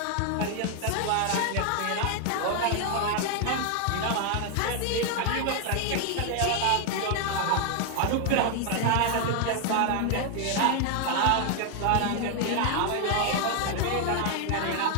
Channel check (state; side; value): different; both; correlation 0.00